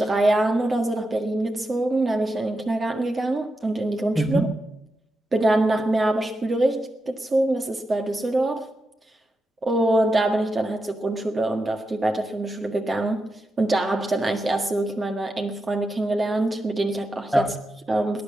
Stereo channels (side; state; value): both; normal; correlation 0.88